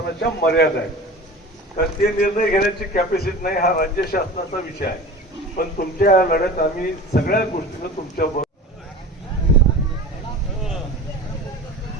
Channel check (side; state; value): both; normal; correlation 0.36